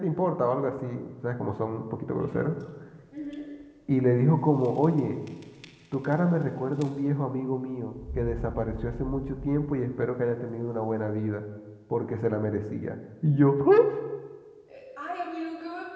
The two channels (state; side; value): identical; both; correlation 1.00